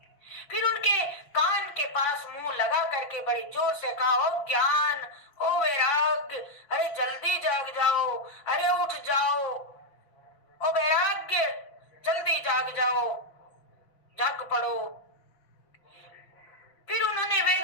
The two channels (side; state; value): right; late; 5.8 ms